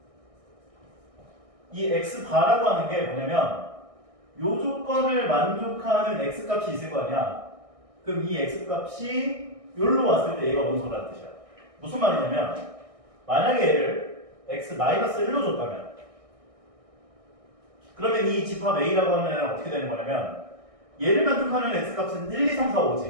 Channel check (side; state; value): left; late; 1.6 ms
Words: 이 x바라고 하는 게 뭐냐면 요 조건을 만족하는 x값이 있을 거 아니야. 그럼 이 x값이 여기로 왔을 때 얘가 원소라는 뜻이야. 무슨 말이냐면 만약에 얘를 x-1로 줬다면 그러면 이 집합 A라고 하는 애는 어떻게 되는 거냐면 얘를 만족하는 x값은 1, 2, 3, 4,